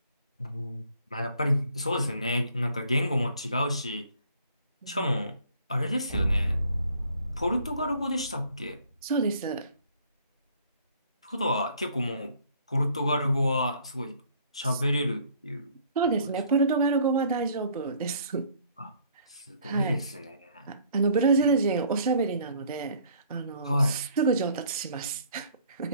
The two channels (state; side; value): inverted; both; correlation -0.58